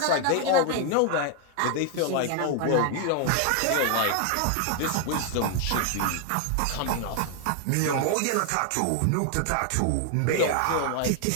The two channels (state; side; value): different; both; correlation 0.00